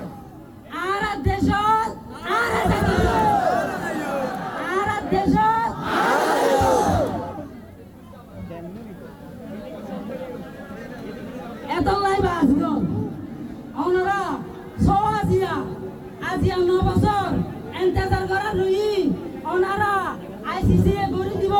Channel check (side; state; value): both; identical; correlation 1.00